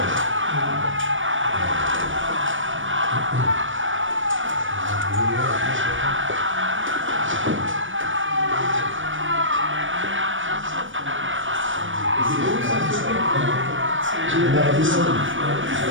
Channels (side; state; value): left; late; 0.57 ms